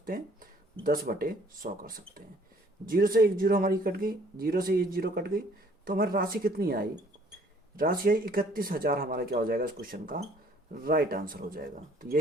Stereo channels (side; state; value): both; normal; correlation 0.59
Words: हैं, 10/100 कर सकते हैं। जीरो से एक जीरो हमारी कट गई, जीरो से एक जीरो कट गई, तो हमारी राशि कितनी आई, राशि आई 31,000। हमारा क्या हो जाएगा इस क्वेश्चन का राइट आंसर हो जाएगा। तो